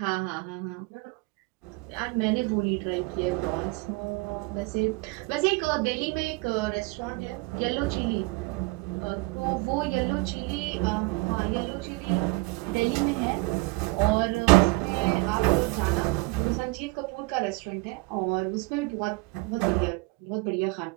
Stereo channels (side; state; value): left; quieter; 24.8 dB